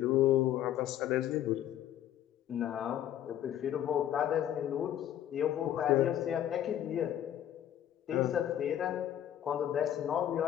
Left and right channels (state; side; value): quieter; right; 11.3 dB